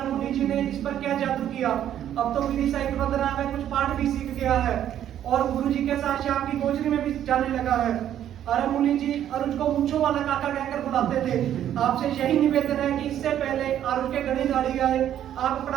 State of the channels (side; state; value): left; quieter; 10.8 dB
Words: मुनि जी ने इस पर क्या जादू किया। अब तो विधि सहित वंदना में कुछ पाठ भी सीख गया है और गुरु जी के साथ शाम की गोचरी में भी जाने लगा है। अरुण मुनि जी अरुण को मूंछों वाला काका कहकर बुलाते थे। आपसे यही निवेदन है कि इससे पहले अरुण के घड़ी गाड़ी आए, आप अपना